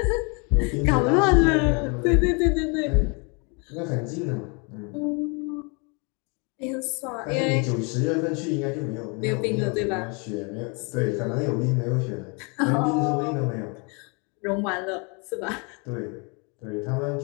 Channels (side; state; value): right; quieter; 32.9 dB